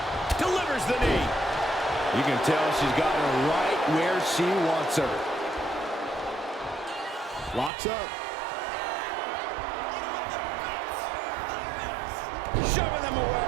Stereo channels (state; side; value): drops out; left; at 7.7 s